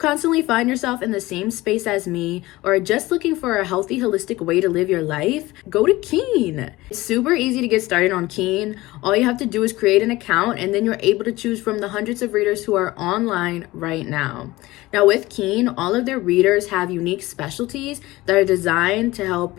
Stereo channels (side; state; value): right; quieter; 19.1 dB